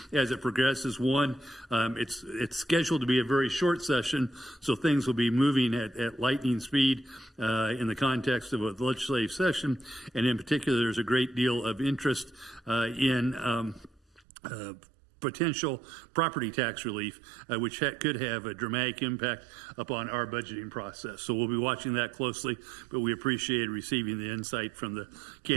as it progresses. One, it's scheduled to be a very short session, so things will be moving at lightning speed in the context of a legislative session, and in particular, there's a great deal of interest in potential property tax relief, which could have a dramatic impact upon our budgeting process. So we'll be watching that closely, but we appreciate receiving the insight from the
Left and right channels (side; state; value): left; drops out; at 14.2 s